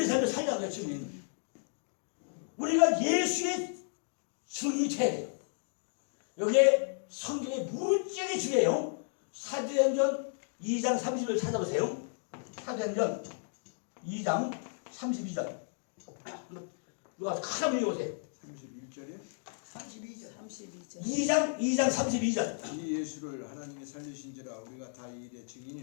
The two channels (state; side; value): silent; right; digital silence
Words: 삶을 살려는 거야. 증인. 우리가 예수의 증인이 돼야 돼요. 여기에 성경에 무지하게 중요해요. 사도행전 2장 30을 찾아보세요. 사도행전 2장 32절. 누가 큰 한번 읽어보세요. 31절이요? 32절. 2장 32절. 이 예수를 하나님이 살리신지라 우리가 다 이 일의